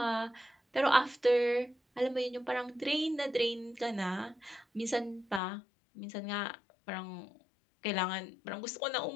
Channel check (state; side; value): drops out; right; at 5.4 s